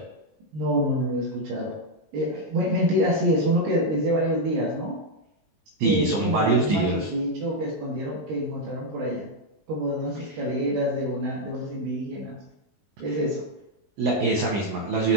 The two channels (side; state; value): left; late; 20 ms